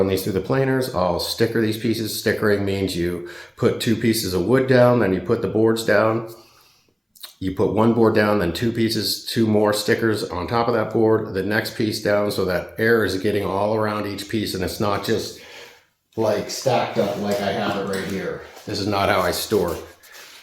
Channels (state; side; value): identical; both; correlation 1.00